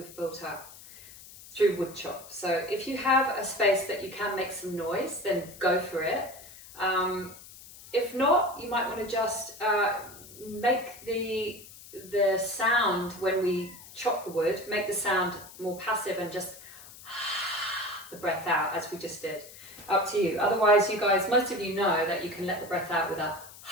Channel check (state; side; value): noise; left; hiss, 18 dB below the sound